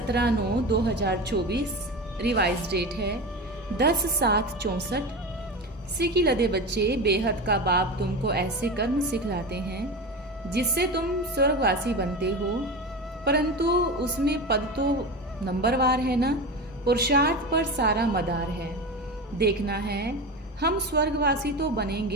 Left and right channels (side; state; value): both; normal; correlation 0.25